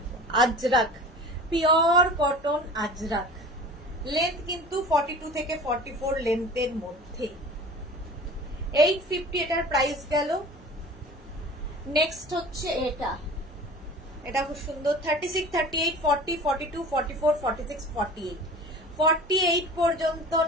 Ajrak, pure cotton Ajrak, length কিন্তু 42 থেকে 44 লেন্থের মধ্যে। 850 এটার প্রাইস গেল। নেক্সট হচ্ছে এটা খুব সুন্দর, 36, 38, 40, 42, 44, 46, 48, 48 পর্যন্ত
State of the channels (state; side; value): normal; both; correlation 0.39